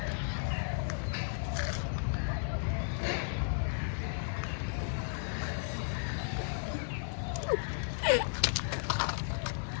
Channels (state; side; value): silent; right; 55 dB below the other